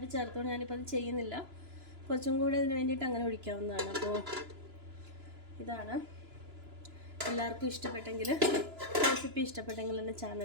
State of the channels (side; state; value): left; late; 2.9 ms